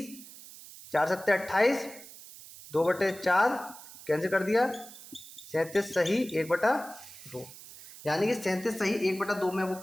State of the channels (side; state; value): right; noise; hiss, 17 dB below the sound